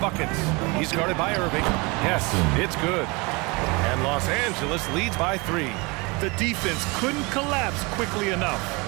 He's guarded by Irving. Yes, it's good. And Los Angeles leads by 3. The defense couldn't collapse quickly enough.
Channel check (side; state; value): left; quieter; 27.0 dB